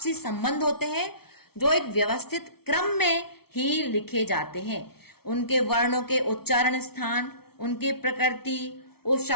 संबंध होते हैं, जो एक व्यवस्थित क्रम में ही लिखे जाते हैं। उनके वर्णों के उच्चारण स्थान, उनकी प्रकृति, उस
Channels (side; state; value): right; late; 0.95 ms